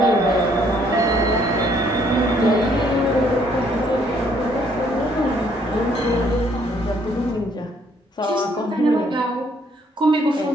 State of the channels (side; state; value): both; normal; correlation 0.66